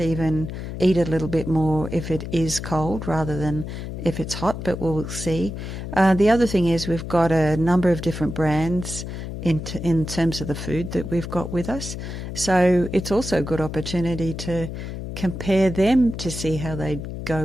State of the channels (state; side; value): noise; left; hum, 7 dB below the sound